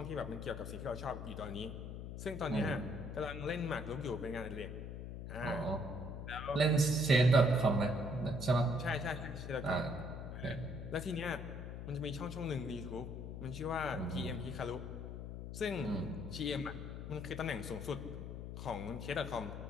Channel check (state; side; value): noise; left; hum, 7 dB below the sound